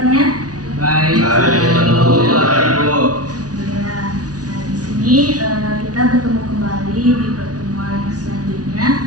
Baik. Alhamdulillah. Nah, di sini kita bertemu kembali di pertemuan selanjutnya,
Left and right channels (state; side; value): late; left; 0.68 ms